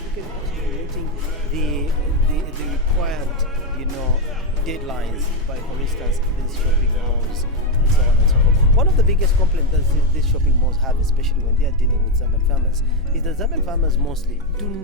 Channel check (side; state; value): both; normal; correlation 0.06